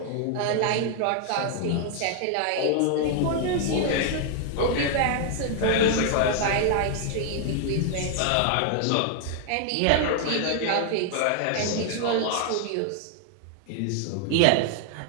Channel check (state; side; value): different; both; correlation 0.00